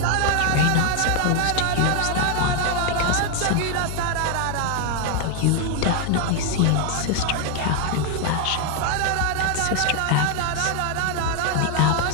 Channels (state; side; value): different; both; correlation 0.00